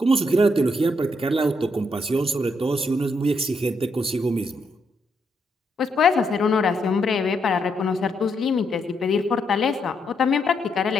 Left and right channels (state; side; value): normal; both; correlation 0.77